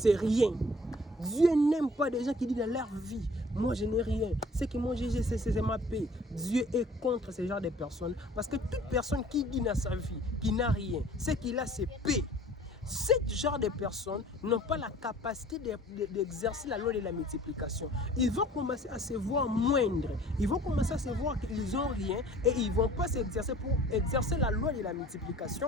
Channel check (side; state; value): both; normal; correlation 0.51